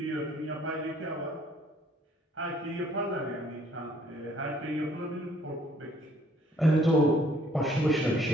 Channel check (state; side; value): normal; both; correlation 0.62